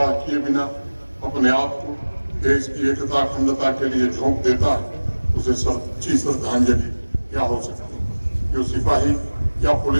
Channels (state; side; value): inverted; both; correlation -1.00